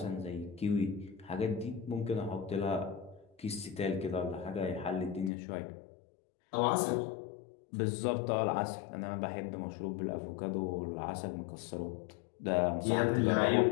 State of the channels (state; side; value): drops out; right; at 5.3 s